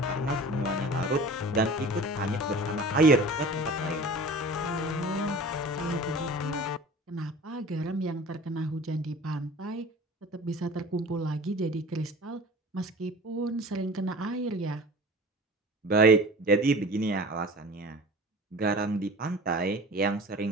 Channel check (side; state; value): both; normal; correlation 0.40